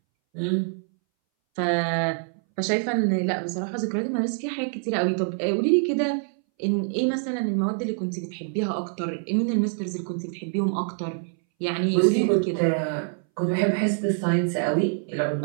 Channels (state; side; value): silent; left; 61 dB below the other